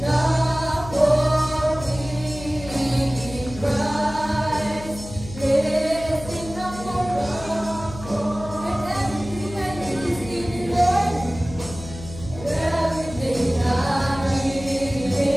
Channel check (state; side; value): noise; left; hum, 13 dB below the sound